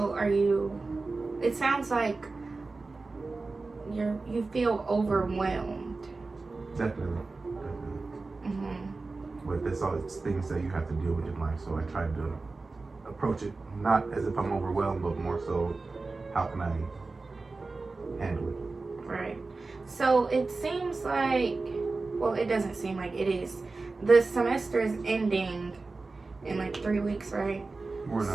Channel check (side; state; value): left; quieter; 3.7 dB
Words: it sounds like you feel overwhelmed. Definitely. But that's all, it's things that you have to deal with in life. So I try to approach it not as if I'm overwhelmed, but more so, how can I handle it? Right. So it seems like, well, it doesn't seem like it is. The semester is ending in like 3 weeks, right? We're